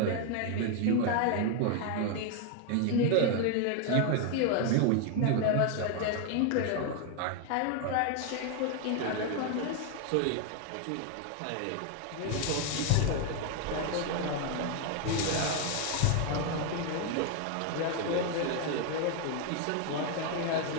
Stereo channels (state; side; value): different; both; correlation 0.01